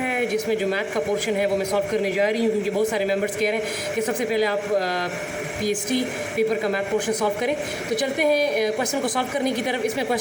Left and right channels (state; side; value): identical; both; correlation 1.00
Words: जिसमें जो मैथ का पोर्शन है वो मैं सॉल्व करने जा रही हूँ, क्योंकि बहुत सारे मेंबर्स कह रहे हैं कि सबसे पहले आप पीएचडी पेपर का मैथ पोर्शन सॉल्व करें। तो चलते हैं क्वेश्चन को सॉल्व करने की तरफ। इसमें